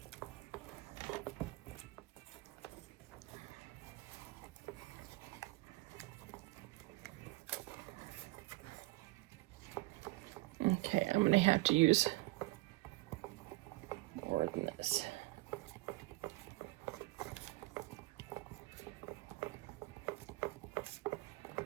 Okay, I'm going to have to use more than this.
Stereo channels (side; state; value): left; quieter; 21.7 dB